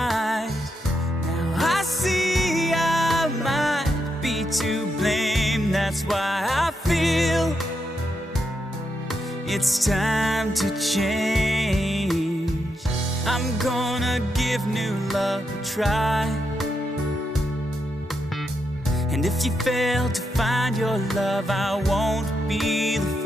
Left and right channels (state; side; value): normal; both; correlation 0.83